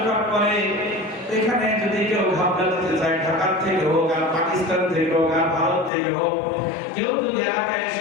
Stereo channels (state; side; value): drops out; right; at 5.9 s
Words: করে, এখানে যদি কেউ ঘাবলা দিতে চায়, ঢাকা থেকে হোক, আর পাকিস্তান থেকে হোক, আর ভারত থেকে হোক, কেউ যদি এলাকায়